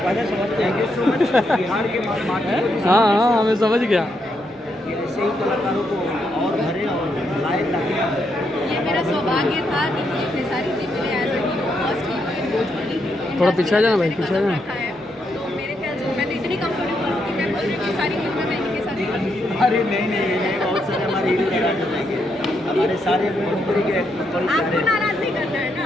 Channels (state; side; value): normal; both; correlation 0.79